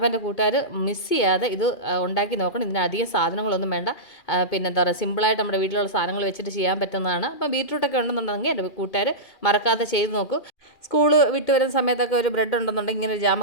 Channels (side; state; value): right; late; 2.4 ms